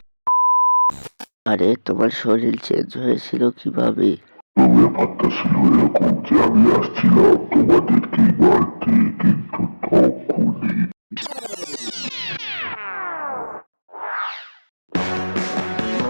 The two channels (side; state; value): both; inverted; correlation -1.00